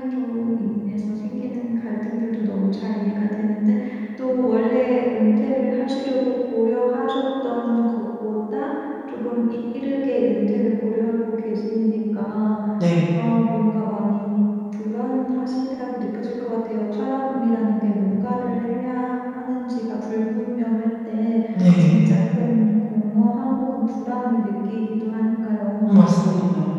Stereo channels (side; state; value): both; identical; correlation 1.00